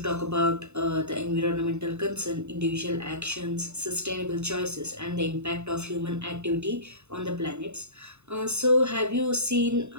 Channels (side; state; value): left; late; 0.82 ms